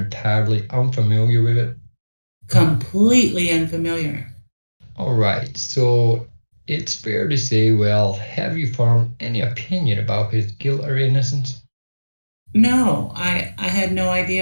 unfamiliar with it? Completely unfamiliar. All right, so it's fair to say, well, have you formed any opinion about his guilt or innocence? No, I had no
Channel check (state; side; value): inverted; both; correlation -1.00